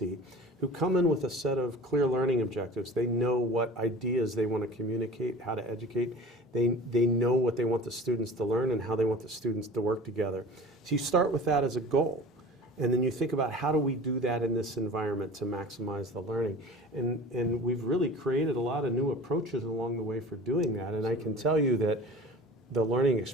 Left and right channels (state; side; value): normal; both; correlation 0.40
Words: who come in with a set of clear learning objectives. They know what ideas they want to communicate, how to educate. They know what they want the students to learn and how they want the students to work together. So you start with that as a goal. And then you think about how do we do that in this environment to maximize the learning. And we've really created a lot of new approaches along the way for doing that. And I can tell you that the learning